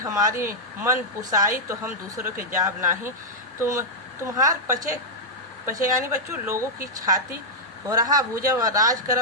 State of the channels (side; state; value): both; normal; correlation -0.07